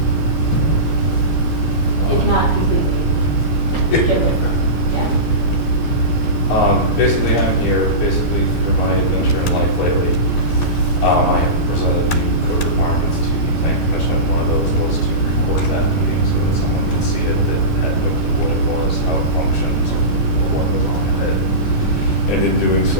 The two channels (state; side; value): late; right; 12 ms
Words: if not completely. Get away from, yeah. Basically, I'm here, basically through my adventure in life lately. I have presented new code requirements to the plan commission. One of those was to record that meeting so that someone could see it that had no clue what it was, how it functions, or what was on it. And in doing so,